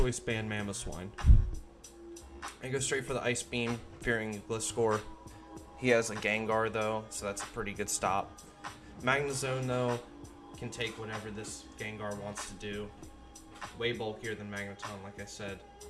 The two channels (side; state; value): both; identical; correlation 1.00